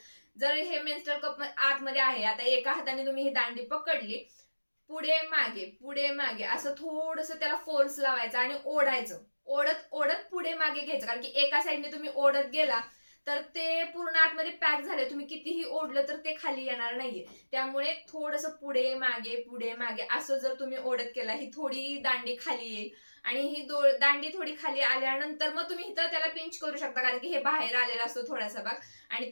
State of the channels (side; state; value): both; inverted; correlation -1.00